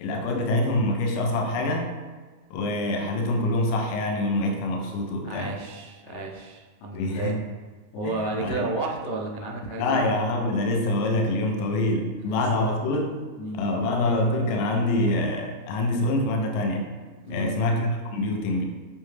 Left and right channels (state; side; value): late; right; 29 ms